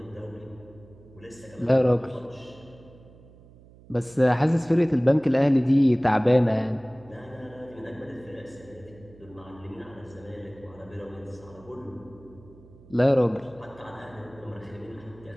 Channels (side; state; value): right; noise; hum, 23 dB below the sound